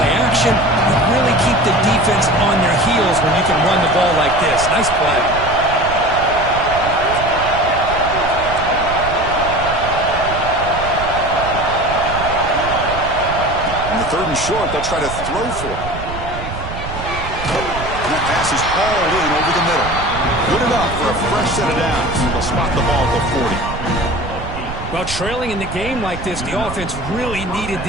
action. You really keep the defense on their heels when you can run the ball like this. Nice play. In the 3rd and short, they'll try to throw for it. And that pass is hauled in over the middle. Good enough for a fresh set of downs. They'll spot the ball at the 40. Well, trailing in the game like this, the offense really needed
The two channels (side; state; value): right; noise; rumble, 9 dB below the sound